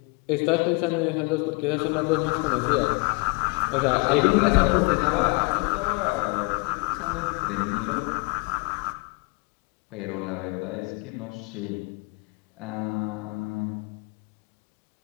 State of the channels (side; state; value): right; quieter; 28.4 dB